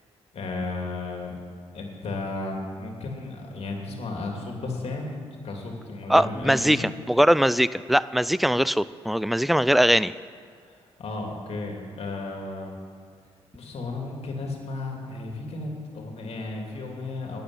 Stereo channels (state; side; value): normal; both; correlation 0.94